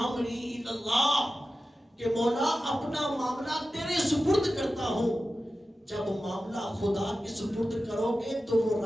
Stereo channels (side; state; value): both; normal; correlation 0.93